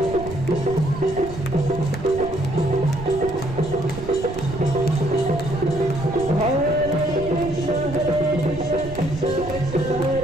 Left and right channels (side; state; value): right; noise; rumble, 11 dB below the sound